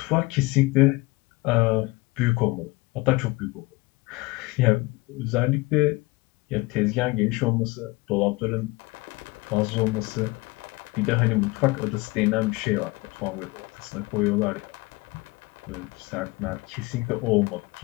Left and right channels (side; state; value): right; quieter; 22.9 dB